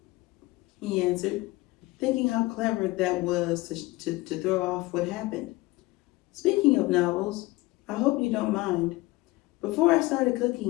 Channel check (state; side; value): quieter; right; 20.5 dB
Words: he answered, thinking how clever that was to throw off what happened. Speaking of novels, I hope you don't mind. Before I started